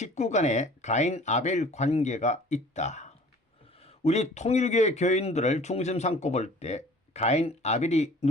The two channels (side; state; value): both; normal; correlation 0.49